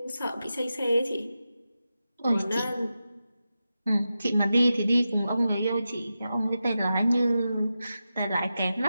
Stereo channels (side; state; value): both; inverted; correlation -0.91